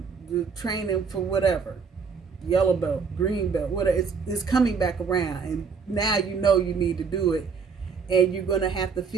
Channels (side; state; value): left; quieter; 5.6 dB